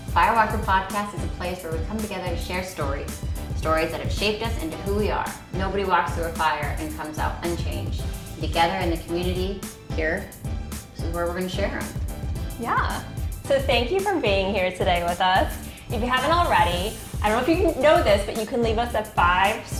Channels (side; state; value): both; identical; correlation 1.00